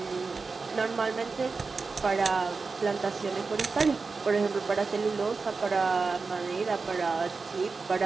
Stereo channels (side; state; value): left; quieter; 4.4 dB